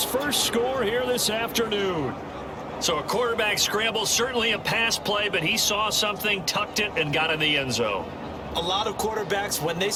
first score here this afternoon. So a quarterback scramble, certainly a pass play, but he saw something, tucked it, and got in the end zone. A lot of quarterbacks, when they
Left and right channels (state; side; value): identical; both; correlation 1.00